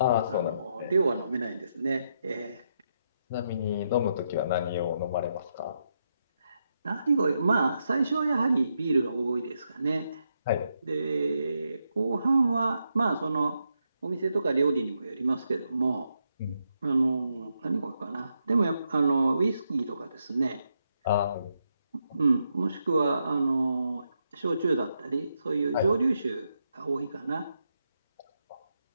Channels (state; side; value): inverted; both; correlation -0.81